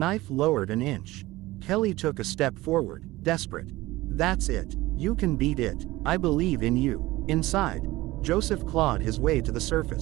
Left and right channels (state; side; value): quieter; left; 18.7 dB